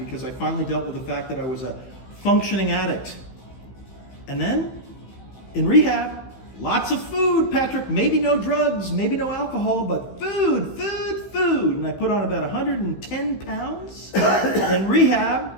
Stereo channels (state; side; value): late; right; 15 ms